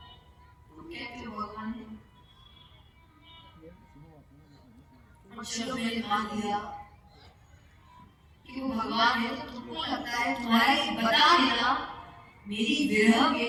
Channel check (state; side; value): identical; both; correlation 1.00